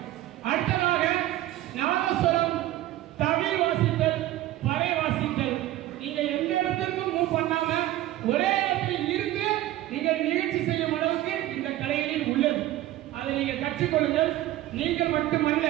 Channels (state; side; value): quieter; left; 14.9 dB